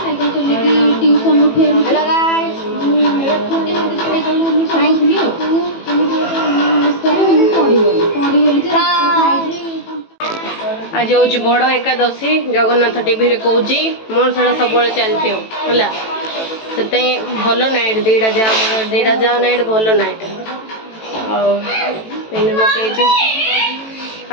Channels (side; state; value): right; late; 18 ms